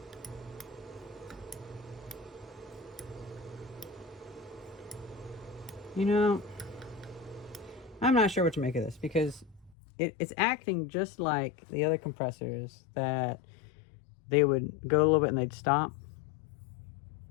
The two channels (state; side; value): drops out; right; at 9.8 s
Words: You know, I'm not sure what to make of this, because it's acting just like the other compressors that they would go a little bit and they'd stop.